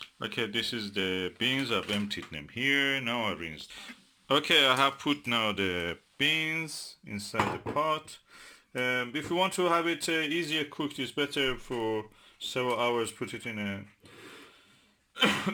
Okay, this is the beans. I've emptied them here. Now I rinsed. Okay, I have put now the beans inside the pot. If you want to have it easier cooked, it's better for several hours. Put it in a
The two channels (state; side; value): identical; both; correlation 1.00